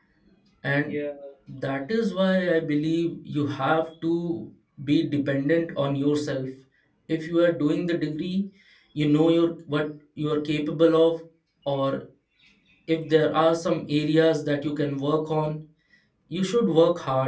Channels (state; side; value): identical; both; correlation 1.00